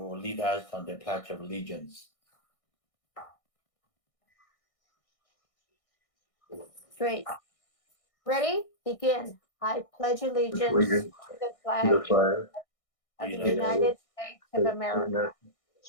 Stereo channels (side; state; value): right; late; 1.6 ms